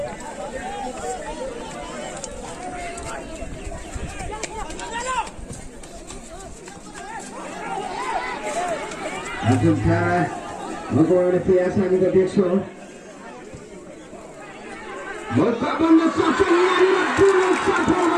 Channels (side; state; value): both; identical; correlation 1.00